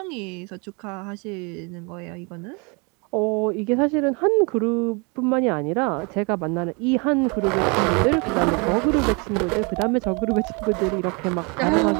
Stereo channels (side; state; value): left; quieter; 31.5 dB